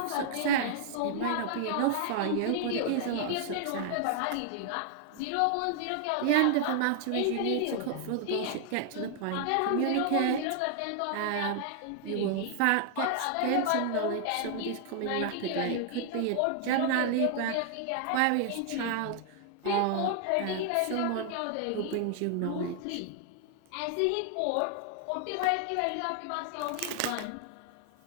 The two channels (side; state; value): both; different; correlation 0.00